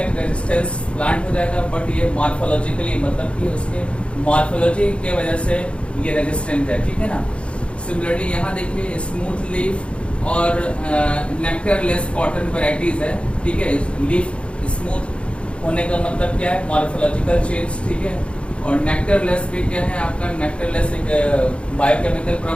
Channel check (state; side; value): late; right; 0.059 ms